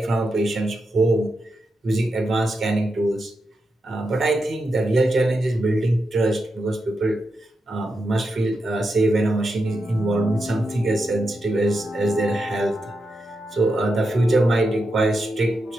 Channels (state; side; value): normal; both; correlation 0.86